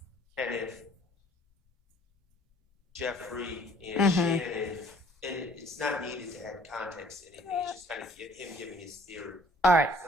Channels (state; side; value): normal; both; correlation 0.57